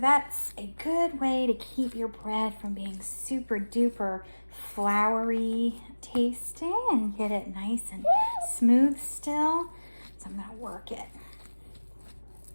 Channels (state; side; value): inverted; both; correlation -1.00